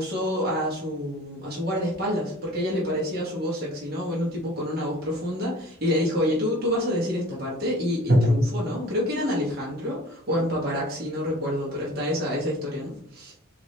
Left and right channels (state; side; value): normal; both; correlation 0.46